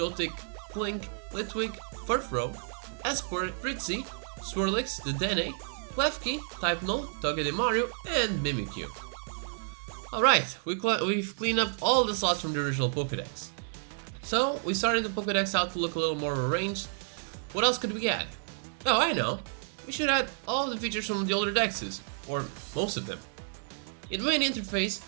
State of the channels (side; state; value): left; silent; digital silence